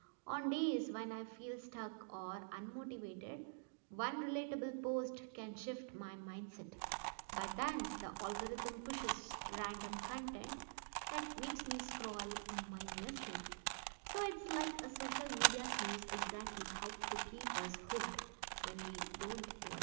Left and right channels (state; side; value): silent; left; digital silence